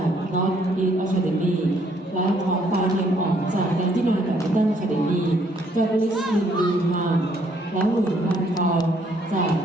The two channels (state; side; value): normal; both; correlation 0.67